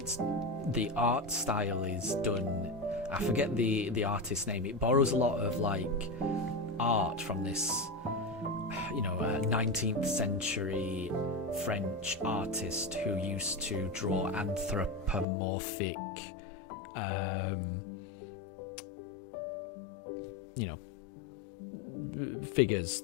the art style is done. I forget the artist's name. It borrows a lot of like art from this, you know, 19th century French artist who used to draw anthropomorphic, you know, figures,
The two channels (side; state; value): right; drops out; at 15.2 s